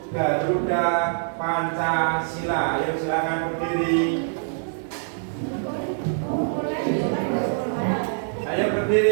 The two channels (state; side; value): silent; left; digital silence